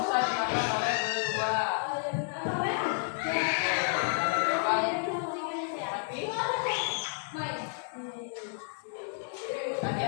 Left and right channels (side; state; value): right; silent; digital silence